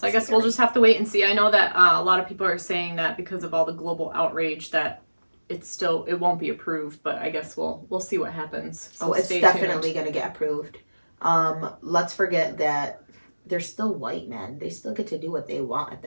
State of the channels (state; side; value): inverted; both; correlation -1.00